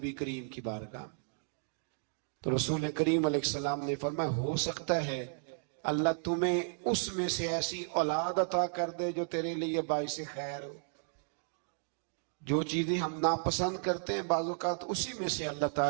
کریم کی بارگاہ، تو رسول کریم علیہ السلام نے فرمایا ہو سکتا ہے اللہ تمہیں اس میں سے ایسی اولاد عطا کر دے جو تیرے لیے باعث خیر ہو۔ جو چیزیں ہم ناپسند کرتے ہیں بعض اوقات اسی میں سے اللہ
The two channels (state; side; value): silent; left; digital silence